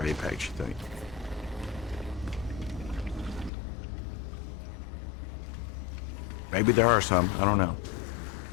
Apex, you think? Maybe there are some. I don't know.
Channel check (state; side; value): drops out; right; at 3.5 s